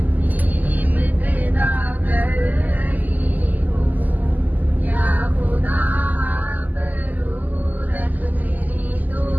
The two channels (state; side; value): late; left; 0.082 ms